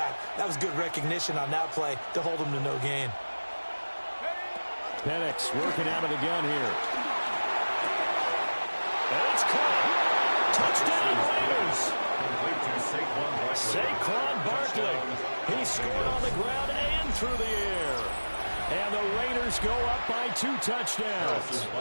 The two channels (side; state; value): both; inverted; correlation -1.00